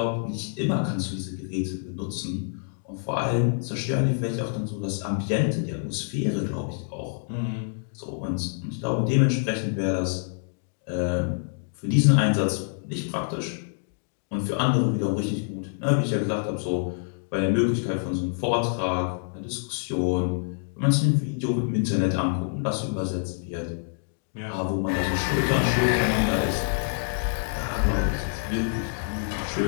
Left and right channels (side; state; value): right; silent; digital silence